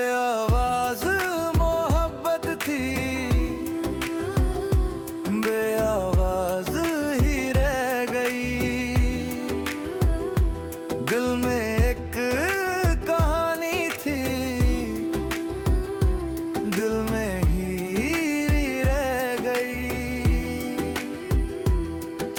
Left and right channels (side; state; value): both; identical; correlation 1.00